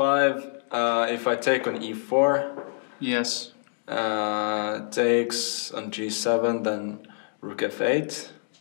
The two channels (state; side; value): silent; right; digital silence